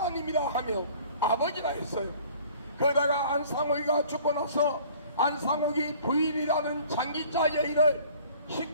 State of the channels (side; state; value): both; inverted; correlation -0.51